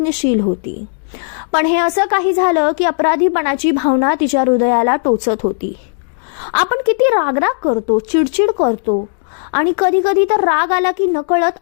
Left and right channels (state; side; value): silent; right; 70 dB below the other